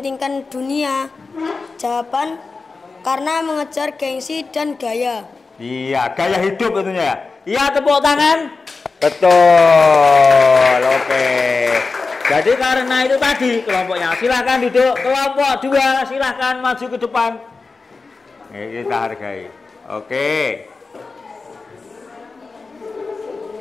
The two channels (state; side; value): quieter; right; 4.1 dB